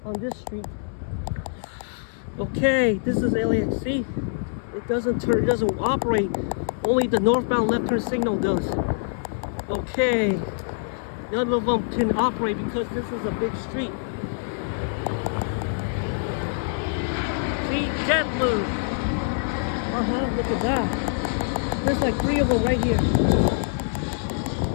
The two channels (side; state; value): right; silent; digital silence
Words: on this street. Okay, this is LAX. See, it doesn't turn, it doesn't operate. Only the northbound left turn signal does. Okay, none of them can operate because this is a big street. See, JetBlue. Look at that. There's like 3 of them right here.